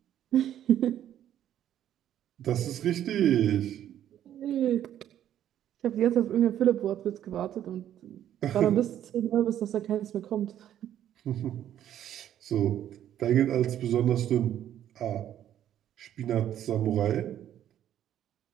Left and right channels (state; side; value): quieter; left; 11.1 dB